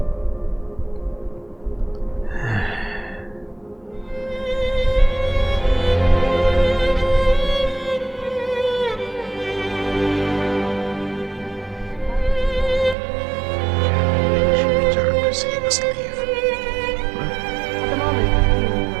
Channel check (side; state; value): left; drops out; at 13.0 s